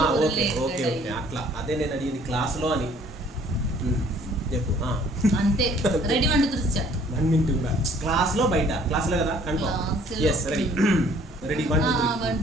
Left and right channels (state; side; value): normal; both; correlation 0.58